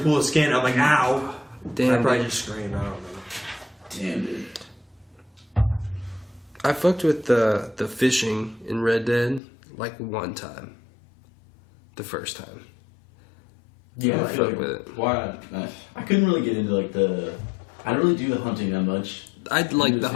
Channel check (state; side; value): drops out; right; at 9.4 s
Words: pull the skin. I'm like, ow. I Damn. probably dude. just screamed. I don't know. Damn, dude. I fucked with the fishing in Red Dead like one time. The first time. Yeah, I I feel fuck like, with it. why? I couldn't really get into like the. I don't really do the hunting that much. I'd like do the